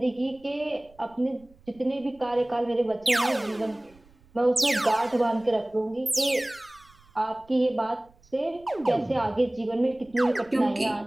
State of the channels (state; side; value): noise; right; rumble, 29 dB below the sound